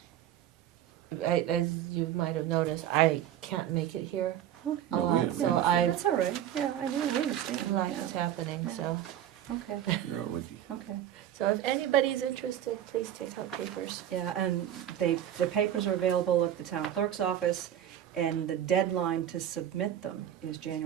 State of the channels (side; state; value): left; quieter; 11.0 dB